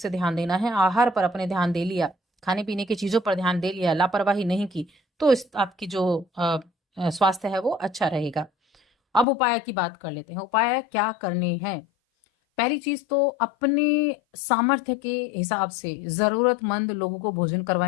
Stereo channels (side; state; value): right; drops out; at 9.2 s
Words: ध्यान देना है। आहार पर अपने ध्यान दे लिया, खाने पीने की चीजों पर ध्यान दे लिया, लापरवाही नहीं की, तो आपकी जो स्वास्थ्य है वो अच्छा रहेगा। अब उपाय की बात कर लेते हैं। उपाय क्या करने हैं? पहली चीज तो अपने सामर्थ्य के हिसाब से जरूरतमंद लोगों को भोजन